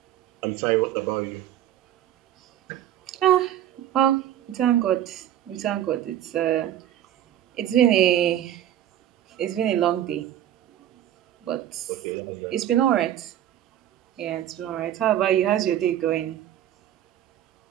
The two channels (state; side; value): quieter; left; 11.5 dB